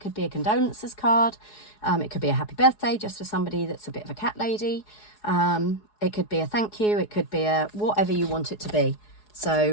be a condolences card. It could be a happy birthday just for somebody that's a bit of a cat lady. It could be a thank you. It could be a whatever you want it to be.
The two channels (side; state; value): right; late; 4.8 ms